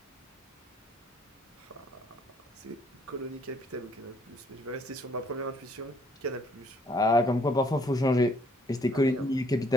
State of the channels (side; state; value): both; normal; correlation 0.64